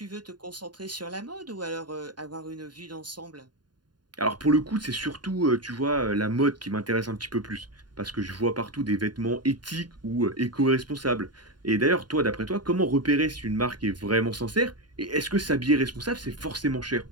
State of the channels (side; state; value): left; late; 0.70 ms